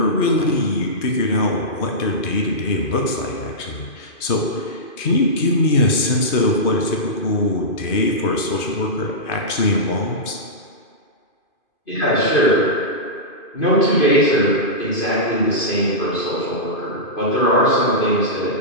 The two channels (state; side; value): late; right; 2.5 ms